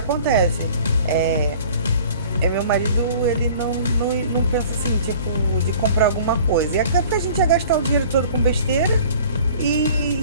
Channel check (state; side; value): inverted; both; correlation -0.48